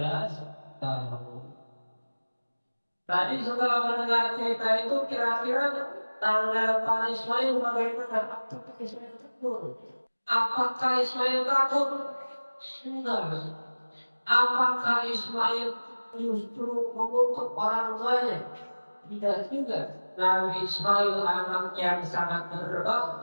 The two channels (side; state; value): both; inverted; correlation -1.00